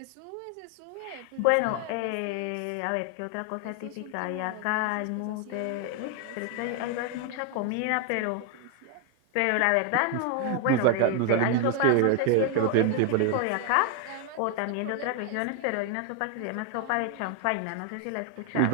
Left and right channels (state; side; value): different; both; correlation 0.01